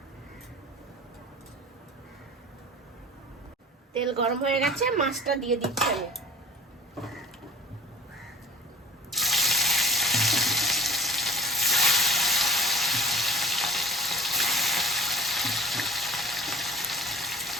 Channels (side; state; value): both; normal; correlation 0.41